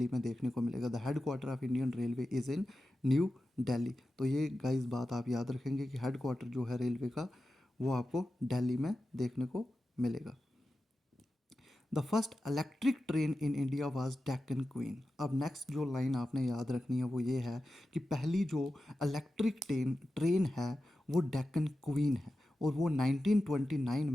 में देखने को मिलेगा। The head quarter of Indian railway is in new Delhi. तो ये गाइस बात आप याद रखेंगे कि हेड क्वार्टर जो है रेलवे का वो आपको दिल्ली में देखने को मिलेगा। The first electric train in India was Deccan queen. अब नेक्स्ट जो लाइन आपने याद रखनी है वो ये है कि पहली जो इलेक्ट्रिक ट्रेन है वो डेक्कन क्वीन है और वो 1929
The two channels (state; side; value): normal; both; correlation 0.92